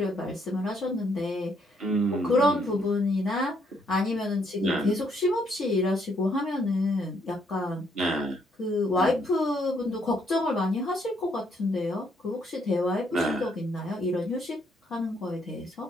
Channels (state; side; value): normal; both; correlation 0.71